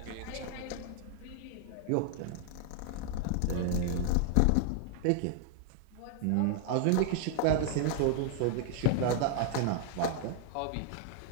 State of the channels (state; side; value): different; both; correlation 0.00